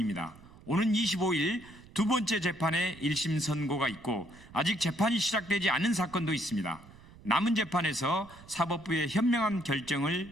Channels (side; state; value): right; noise; rumble, 22 dB below the sound